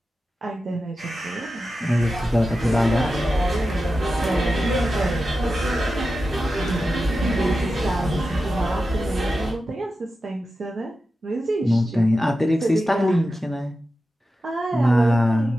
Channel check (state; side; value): normal; both; correlation 0.92